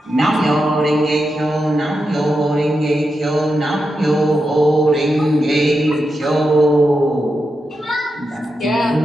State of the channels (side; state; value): both; normal; correlation 0.88